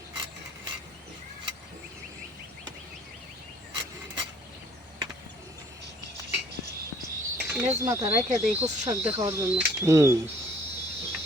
লেজ মাথা রেখে দেই কচু শাক দেখার জন্য।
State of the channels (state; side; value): normal; both; correlation 0.59